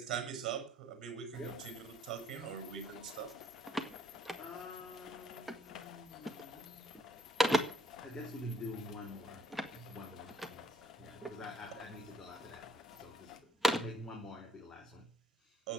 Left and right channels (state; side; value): normal; both; correlation 0.65